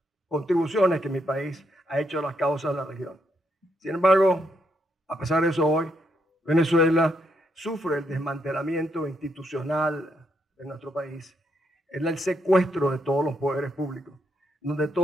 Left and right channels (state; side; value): normal; both; correlation 0.77